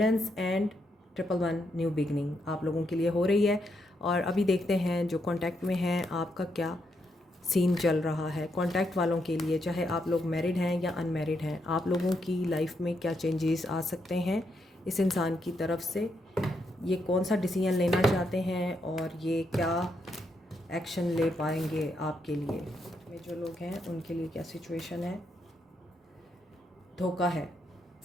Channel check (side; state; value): both; normal; correlation 0.80